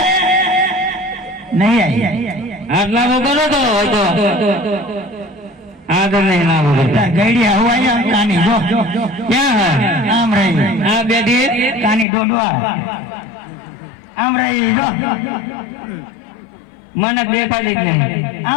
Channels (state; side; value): drops out; right; at 12.1 s